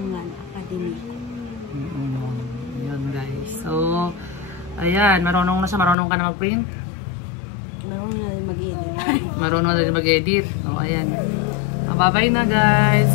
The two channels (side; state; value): right; drops out; at 6.0 s